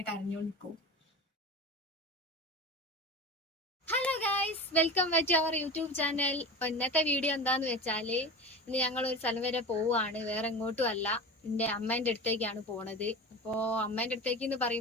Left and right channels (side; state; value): both; normal; correlation 0.30